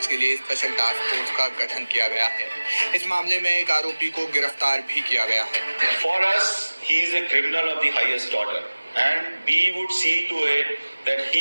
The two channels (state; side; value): inverted; both; correlation -1.00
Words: के लिए स्पेशल टास्क फोर्स का गठन किया गया है। इस मामले में एक आरोपी को गिरफ्तार भी किया गया है। For us, he is a criminal of the highest order, and we would see to it that